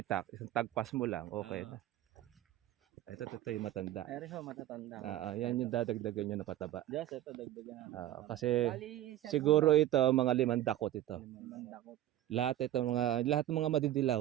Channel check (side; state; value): left; quieter; 13.5 dB